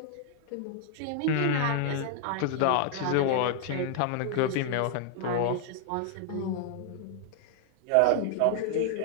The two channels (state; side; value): different; both; correlation 0.00